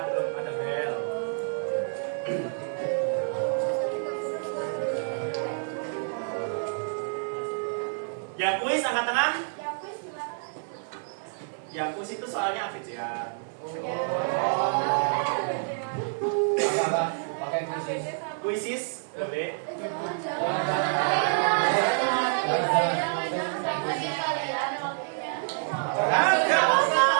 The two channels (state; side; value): silent; left; digital silence